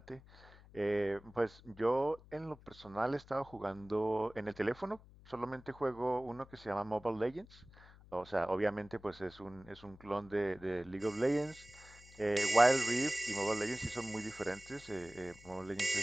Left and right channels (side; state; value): left; noise; hum, 22 dB below the sound